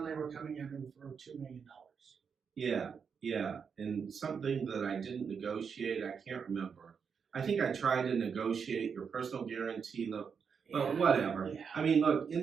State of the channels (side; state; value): left; quieter; 6.3 dB